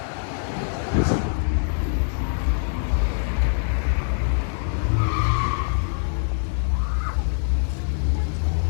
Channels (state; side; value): silent; right; 63 dB below the other